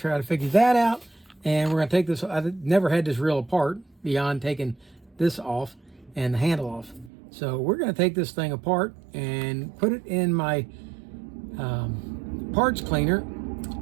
to figure that out, and we're going to take this. I've never had this reel apart beyond taking this off and the handle off. So we're going to take this thing apart and put it in my parts cleaner,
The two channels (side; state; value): left; drops out; at 7.1 s